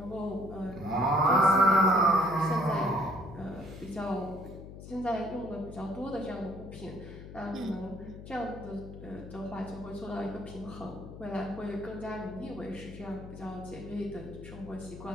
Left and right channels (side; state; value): left; noise; hum, 13 dB below the sound